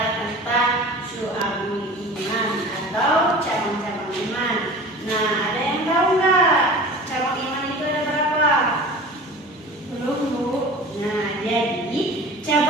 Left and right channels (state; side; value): normal; both; correlation 0.39